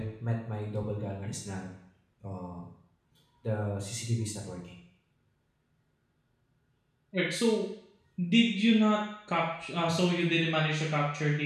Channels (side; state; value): both; identical; correlation 1.00